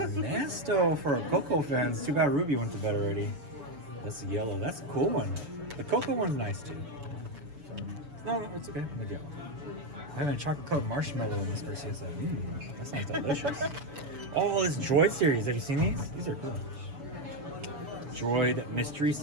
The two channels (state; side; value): late; left; 7.0 ms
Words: for Coco fans. Too bad Ruby went to bed already. That's yellow. That's a cool one. The Coco one's nice too. No, it's okay. I'm yellow. I have a chocolate covered marshmallow in this version. That sounds delicious. Oh, this Droid series. Have you seen these? These are cool. Droid mystery